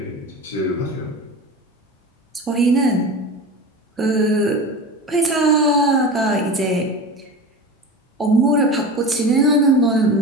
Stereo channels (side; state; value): both; normal; correlation 0.29